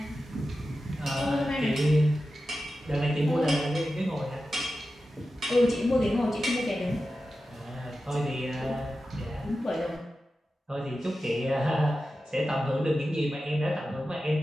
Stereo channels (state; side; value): normal; both; correlation 0.92